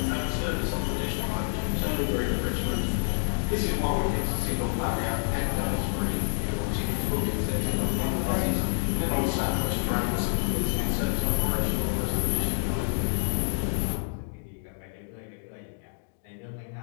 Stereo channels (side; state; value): right; silent; digital silence